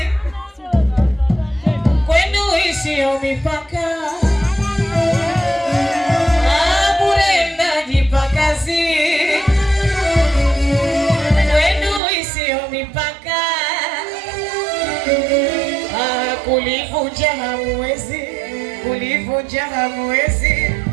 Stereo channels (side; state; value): left; drops out; at 12.0 s